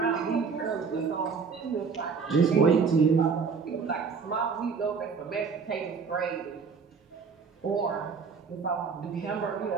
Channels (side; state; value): left; quieter; 5.5 dB